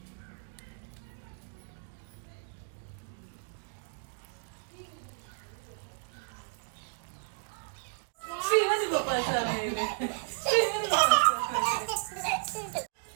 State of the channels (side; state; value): left; silent; digital silence